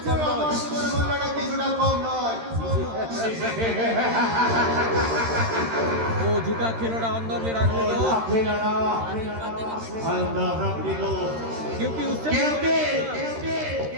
কম নয়। কিছুটা কম নয়। वो झुका खिलौना अंदर में रख दो अंदर रख दो क्योंकि उससे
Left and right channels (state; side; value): late; left; 13 ms